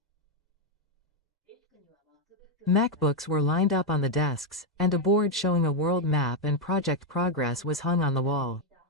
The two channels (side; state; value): both; normal; correlation 0.02